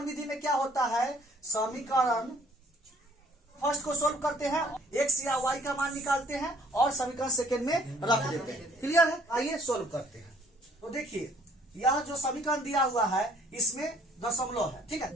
विधि में क्या होता है, समीकरण फर्स्ट को सोल्व करते हैं, x या y का मान निकालते हैं और समीकरण सेकंड में रख देते हैं। क्लियर है? आइए सोल्व करते हैं। तो देखिए यह जो समीकरण दिया हुआ है इसमें दशमलव है, ठीक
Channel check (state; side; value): normal; both; correlation 0.60